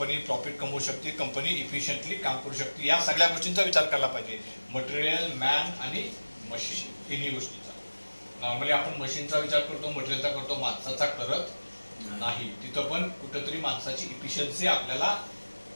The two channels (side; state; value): both; inverted; correlation -1.00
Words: प्रॉफिट कमवू शकते, कंपनी इफिशियंटली काम करू शकते. या सगळ्या गोष्टींचा विचार करायला पाहिजे. मटेरियल, मॅन आणि मशीन, तिन्ही गोष्टींचा. नॉर्मली आपण मशीनचा विचार करतो, मटेरियलचा करतो, माणसाचा करत नाही. तिथं पण कुठंतरी माणसाची इफिशियन्सी आपल्याला